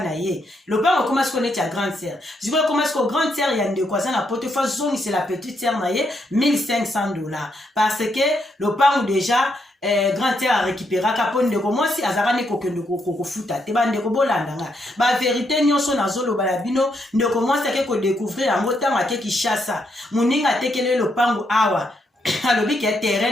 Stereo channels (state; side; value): normal; both; correlation 0.78